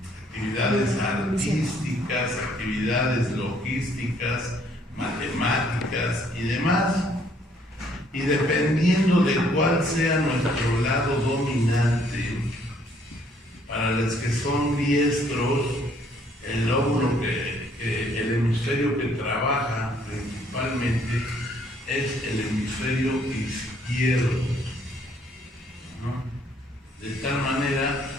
actividades artísticas, actividades logísticas, matemáticas y demás. Y dependiendo de cuál sea nuestro lado dominante, para los que son diestros, el lóbulo el hemisferio que trabaja principalmente es el hemisferio izquierdo, ¿no? De tal manera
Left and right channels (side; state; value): both; normal; correlation 0.65